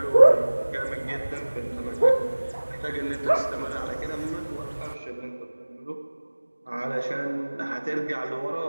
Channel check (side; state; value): both; inverted; correlation -1.00